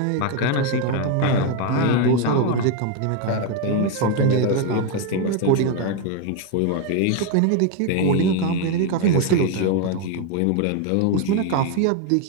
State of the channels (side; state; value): both; different; correlation 0.01